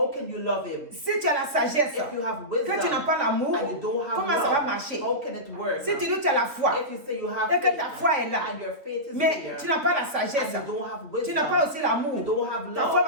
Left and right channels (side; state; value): left; late; 3.3 ms